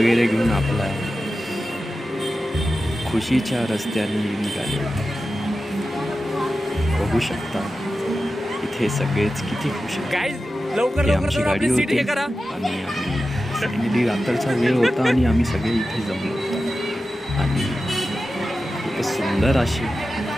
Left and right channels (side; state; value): both; normal; correlation 0.93